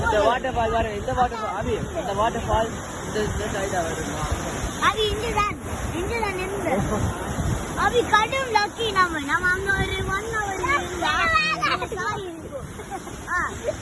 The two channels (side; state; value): both; identical; correlation 1.00